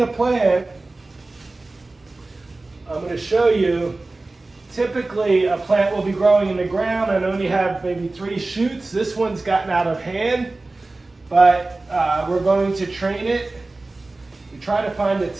a plant, I'm going to show you, typically a plant will be growing in the ground and only have maybe 3 shoots. This one's gotten out of hand, but we're going to train it. We try to find the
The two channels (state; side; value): quieter; left; 3.2 dB